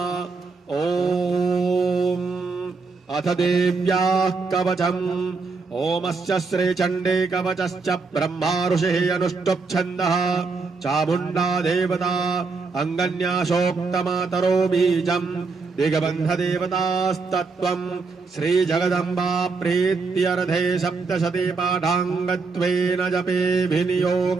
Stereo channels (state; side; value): quieter; left; 4.3 dB